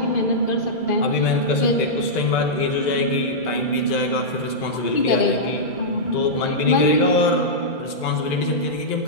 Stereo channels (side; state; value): right; late; 2.0 ms